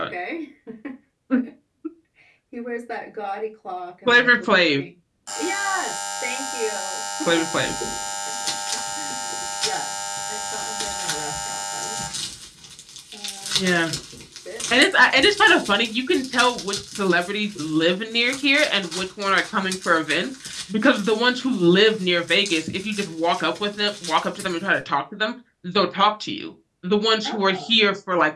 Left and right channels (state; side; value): identical; both; correlation 1.00